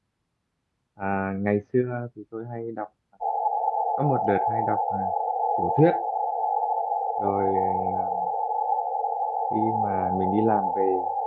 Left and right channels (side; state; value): both; identical; correlation 1.00